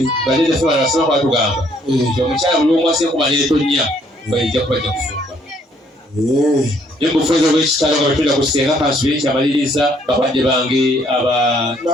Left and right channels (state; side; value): normal; both; correlation 0.66